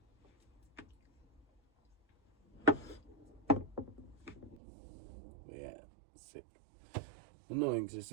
But yeah, sick. Annoying because it's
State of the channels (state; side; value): drops out; left; at 4.5 s